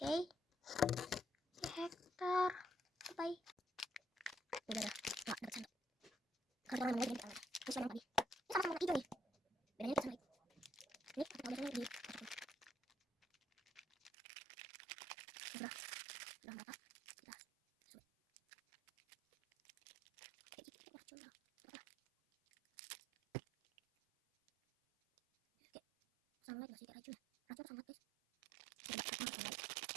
Hektar. Bye. Udah, enggak dapat sandok. Karena orang lagi ini sama tadi. Ini sama hijau nih. Bedanya kita sama ini pakai biasanya di sudah berapa? Sudah. Kayak gitu kita coba. Oke. Sama lagi masih racun. Racun sama guys.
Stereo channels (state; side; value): drops out; left; at 14.1 s